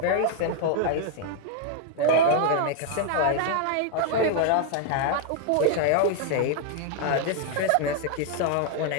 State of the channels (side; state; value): both; different; correlation 0.00